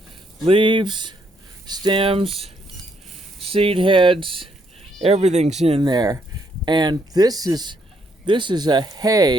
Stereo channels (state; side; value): normal; both; correlation 0.72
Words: Leaves, stems, seed heads, everything's in there. And this is a